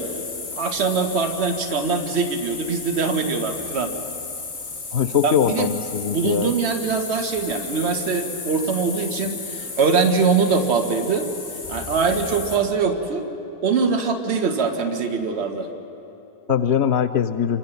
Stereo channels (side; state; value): left; late; 3.1 ms